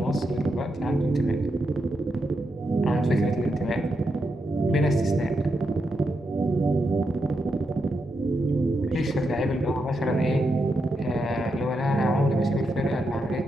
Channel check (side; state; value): both; normal; correlation 0.84